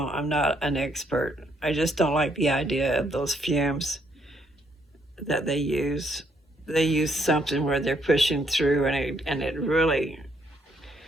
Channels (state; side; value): normal; both; correlation 0.72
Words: not an expert. I just don't like the idea of those fumes that they use. They use something where they're pushing through, and it really,